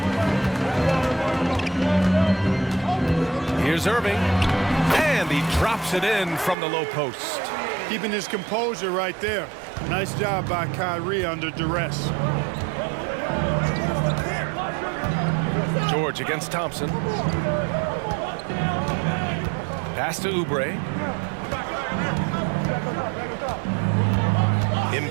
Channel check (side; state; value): left; drops out; at 6.6 s